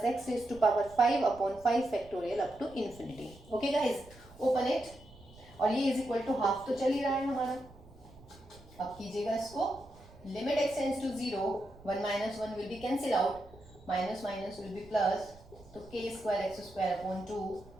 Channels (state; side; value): noise; right; rumble, 22 dB below the sound